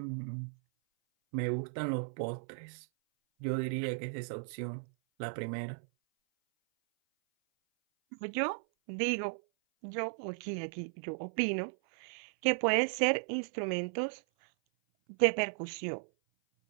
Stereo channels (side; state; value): left; silent; 54 dB below the other